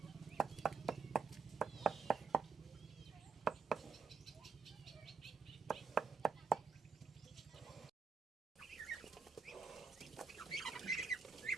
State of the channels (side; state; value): left; quieter; 5.0 dB